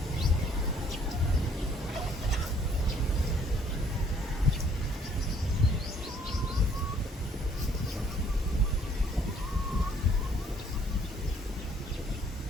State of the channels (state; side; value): normal; both; correlation 0.62